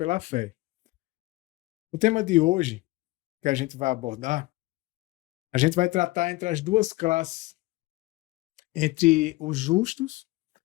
fé. O tema de hoje, que a gente vai abordar, a gente vai tratar entre as duas classes, entre os justos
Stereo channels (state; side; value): quieter; right; 20.2 dB